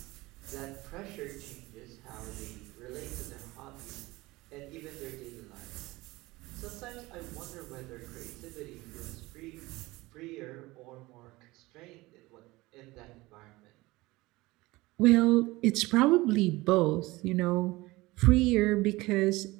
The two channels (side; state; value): left; quieter; 20.6 dB